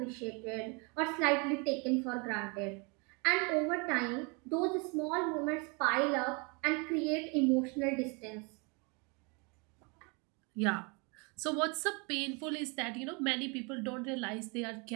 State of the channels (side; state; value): left; quieter; 31.5 dB